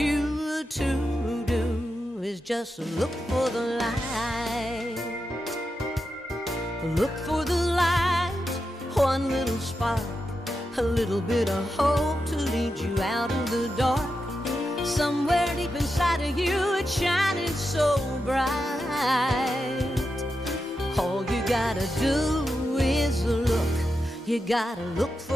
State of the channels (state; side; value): normal; both; correlation 0.88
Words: to do is just look for the light. Look for the light, one little spark, a little bit of hope to lead you out of the dark. Somewhere deep inside of you, it's shining so bright. All you gotta do is look. You gotta look